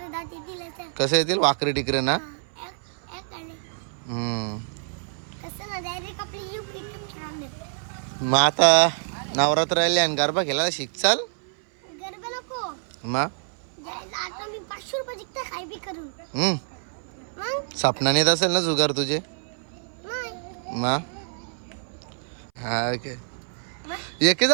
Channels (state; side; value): silent; left; 58 dB below the other